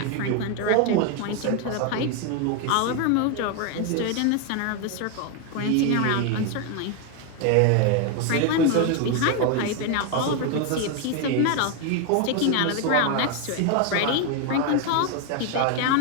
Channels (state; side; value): different; both; correlation 0.01